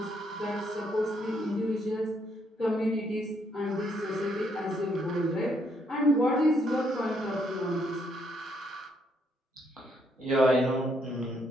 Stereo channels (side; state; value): both; normal; correlation 0.73